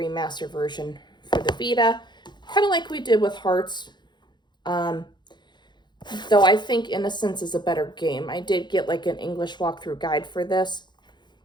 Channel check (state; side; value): late; right; 0.21 ms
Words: version for the Vita. Kind of like we did with Hearts. Though I think Innocence is a better game. I did get like an English walkthrough guide for this.